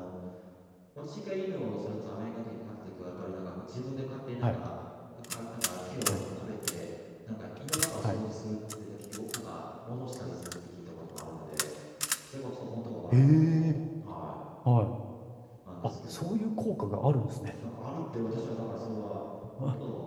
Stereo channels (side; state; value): both; identical; correlation 1.00